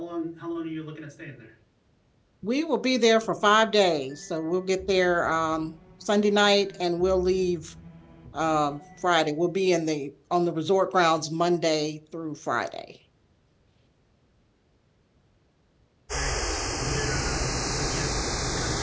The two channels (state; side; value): identical; both; correlation 1.00